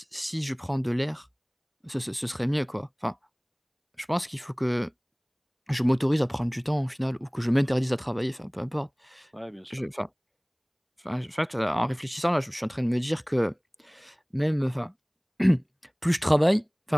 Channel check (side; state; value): both; identical; correlation 1.00